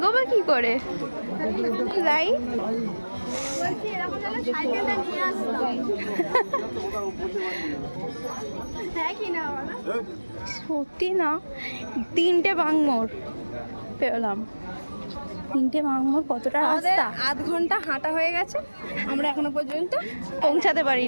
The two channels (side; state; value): both; inverted; correlation -1.00